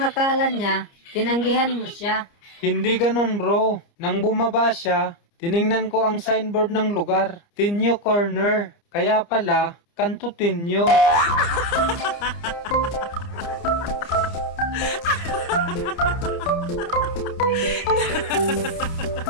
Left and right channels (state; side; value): late; right; 29 ms